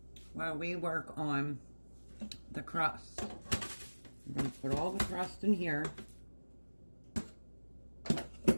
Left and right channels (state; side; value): inverted; both; correlation -1.00